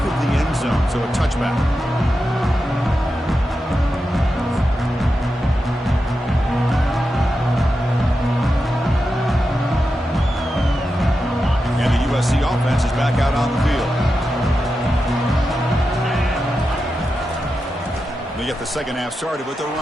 of the end zone, so a touchback. And the USC offense is back out on the field. They get the 2nd half started with a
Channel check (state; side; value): normal; both; correlation 0.89